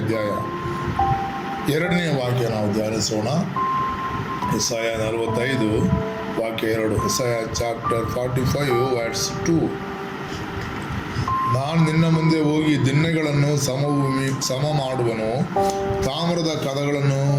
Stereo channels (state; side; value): identical; both; correlation 1.00